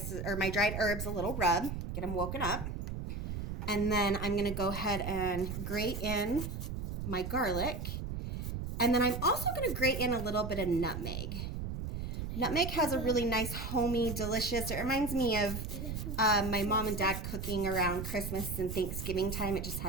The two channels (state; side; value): noise; right; rumble, 5 dB below the sound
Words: or my dried herbs a little rub, get them woken up. And then I'm going to go ahead and grate in my garlic. And then I'm also going to grate in a little bit of nutmeg. Nutmeg has a really nice, homey, delicious, it reminds me of my mom and dad cooking around Christmas and Thanksgiving time. It just